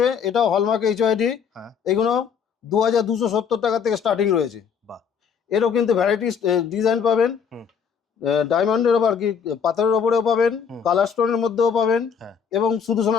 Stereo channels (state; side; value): quieter; right; 6.8 dB